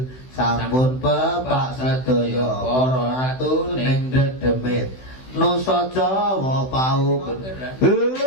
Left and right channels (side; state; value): right; late; 16 ms